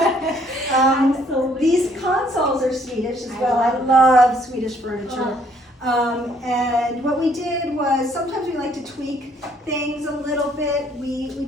These consoles are Swedish as well. I love Swedish furniture. And what we did was sometimes we like to tweak things a little bit. We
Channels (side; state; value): both; normal; correlation 0.65